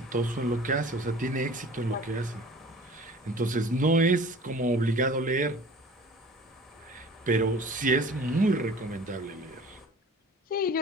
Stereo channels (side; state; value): both; normal; correlation 0.45